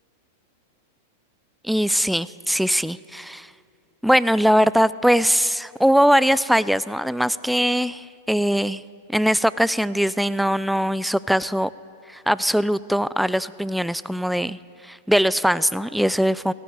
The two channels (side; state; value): both; normal; correlation 0.98